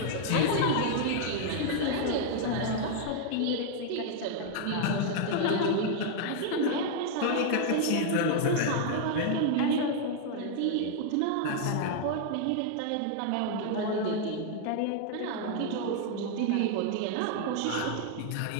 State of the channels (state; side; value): different; both; correlation 0.00